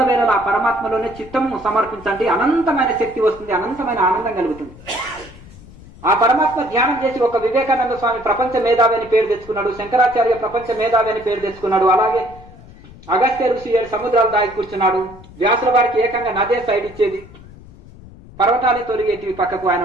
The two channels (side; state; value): left; noise; rumble, 20 dB below the sound